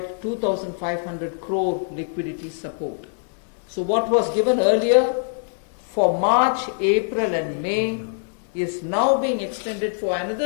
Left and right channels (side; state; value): right; silent; 63 dB below the other